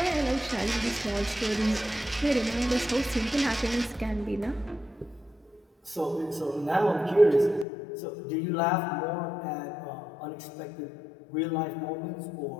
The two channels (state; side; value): drops out; right; at 7.7 s